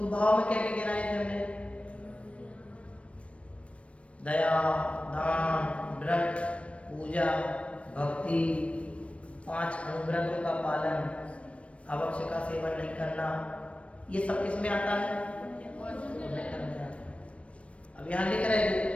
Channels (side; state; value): right; late; 0.062 ms